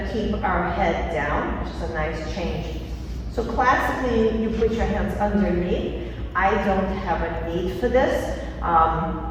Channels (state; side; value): identical; both; correlation 1.00